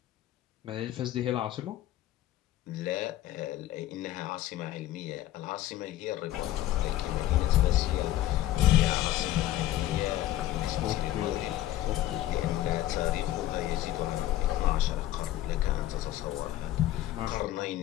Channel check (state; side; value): quieter; right; 14.0 dB